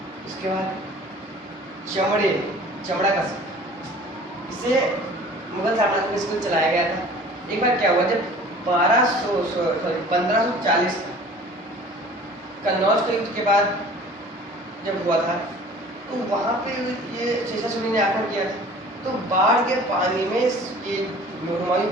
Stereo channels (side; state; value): both; normal; correlation 0.46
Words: इसके बाद चमड़ा का सिक्का, इसे मुगल साम्राज्य में इसको चलाया गया था। एक बार क्या हुआ, जब 1540 कन्नौज के युद्ध के बाद जब हुआ था, तो वहां पे ये शेषासुरी ने आक्रमण किया था, तो बाढ़ के पानी में ये हुमायूं